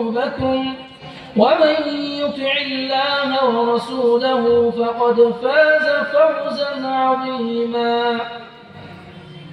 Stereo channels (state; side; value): identical; both; correlation 1.00